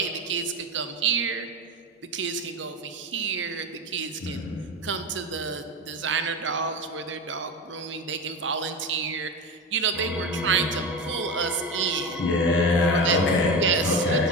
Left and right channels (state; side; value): normal; both; correlation 0.22